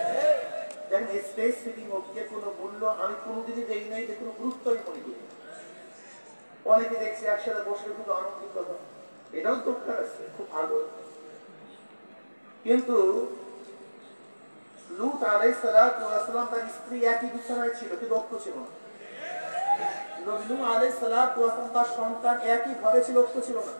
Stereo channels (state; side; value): inverted; both; correlation -1.00